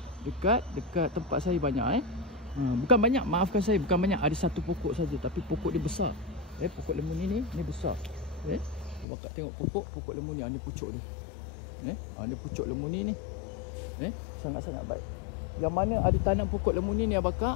dekat tempat saya banyak. Bukan banyak, maafkan saya, bukan banyak. Ada satu pokok saja, tapi pokok dia besar. Pokok lemuni ni besar. Bakak tengok pokok lemuni. Ni pucuk dia. Ni pucuk lemuni ni. Sangat-sangat baik. Yang mana ada tanam pokok lemuni ni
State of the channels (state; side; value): drops out; right; at 9.1 s